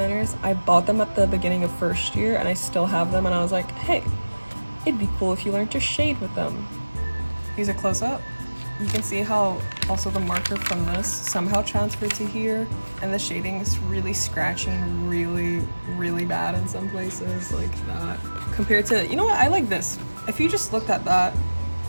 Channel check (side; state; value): both; inverted; correlation -1.00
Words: I bought them at the beginning of first year and I still have them, and I was like, hey, it'd be cool if you learned to shade with them. Use a close-up. You can see how also the marker from this somehow transferred to here, and the shading is really scratchy and really bad in some places, like that. Compared to, you know what, I like this. If you just looked at that,